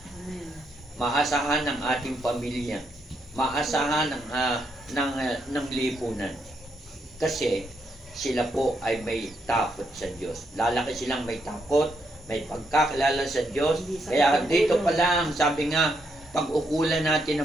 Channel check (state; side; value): normal; both; correlation 0.78